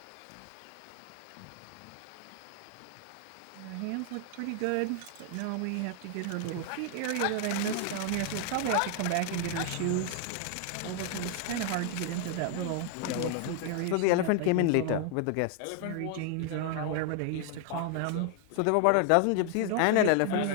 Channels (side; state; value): both; different; correlation 0.00